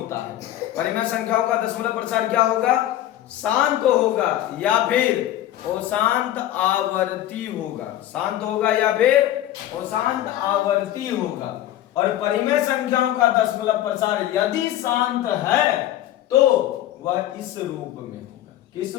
है। परिमेय संख्याओं का दशमलव प्रसार क्या होगा? शांत होगा या फिर अशांत आवर्ती होगा। शांत होगा या फिर अशांत आवर्ती होगा। और परिमेय संख्याओं का दशमलव प्रसार यदि शांत है तो वह इस रूप में होगा। किस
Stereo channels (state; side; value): quieter; right; 13.1 dB